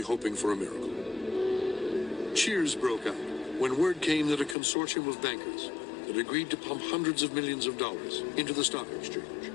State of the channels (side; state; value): right; drops out; at 4.5 s